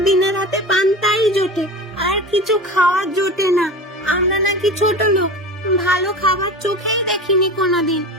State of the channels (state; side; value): normal; both; correlation 0.31